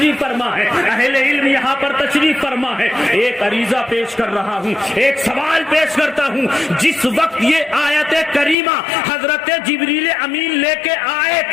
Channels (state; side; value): drops out; right; at 8.6 s